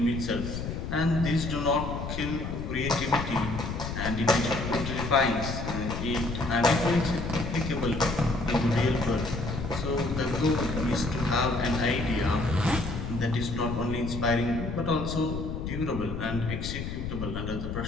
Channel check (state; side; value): noise; left; rumble, 5 dB below the sound